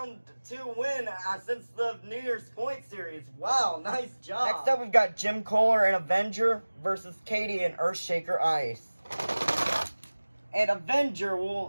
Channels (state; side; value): inverted; both; correlation -1.00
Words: 2 win since the New Year's Point series. Wow, nice job. Next up, we've got Jim Kohler and Avenger versus Katie and Earthshaker Ice. And Avenger